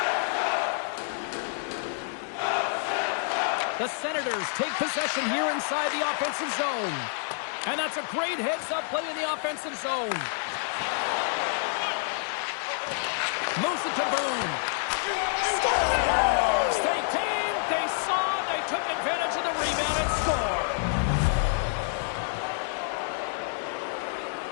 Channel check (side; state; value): right; silent; digital silence